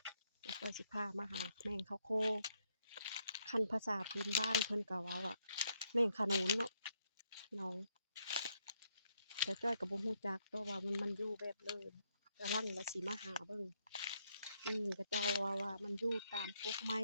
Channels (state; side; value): inverted; both; correlation -0.75